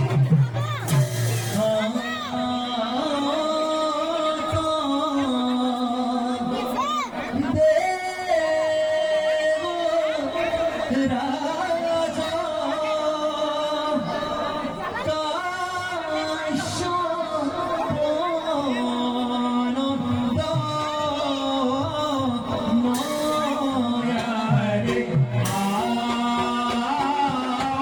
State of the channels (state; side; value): identical; both; correlation 1.00